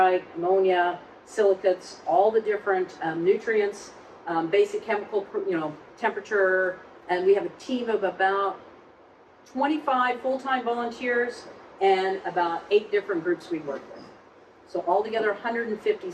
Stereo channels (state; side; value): identical; both; correlation 1.00